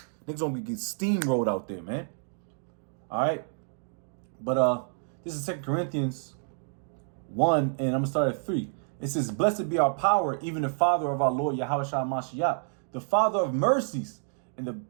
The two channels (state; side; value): silent; left; digital silence